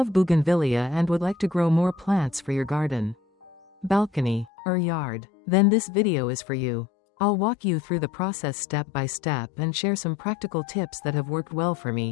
Bougainvillea and would like to grow more plants for your garden, balcony, or yard, then this video is for you. I'll walk you through the process step by step and share some practical tips that have worked well for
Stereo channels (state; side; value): drops out; right; at 4.5 s